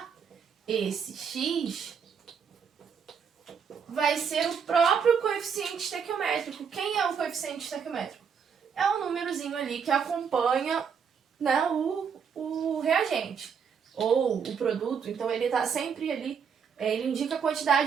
esse X vai ser o próprio coeficiente estequiométrico. Quem é o coeficiente estequiométrico? É um númerozinho ali que acompanha, né, o reagente ou o produto. Então, ele está sempre ali, ele indica a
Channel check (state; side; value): quieter; left; 6.7 dB